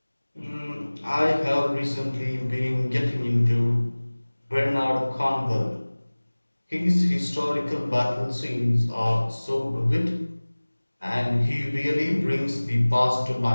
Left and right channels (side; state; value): both; inverted; correlation -1.00